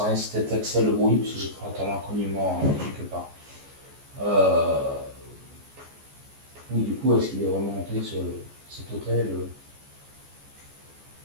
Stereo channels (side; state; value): left; late; 14 ms